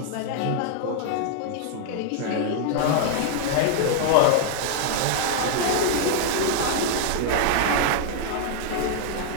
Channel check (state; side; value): different; both; correlation -0.01